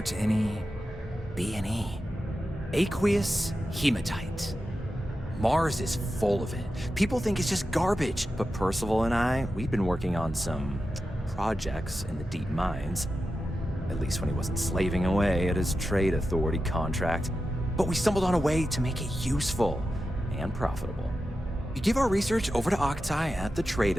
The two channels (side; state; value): both; normal; correlation 0.91